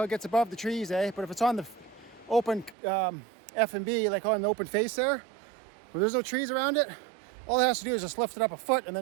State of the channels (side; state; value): left; drops out; at 2.8 s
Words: it gets above the trees, eh? But if it's on the open F&B, like on the open face there, where there's no trees around it, all it has to do is just lift it up a foot and